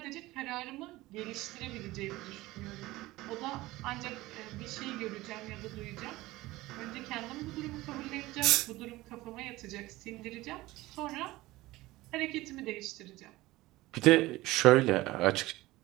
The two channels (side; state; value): left; quieter; 18.7 dB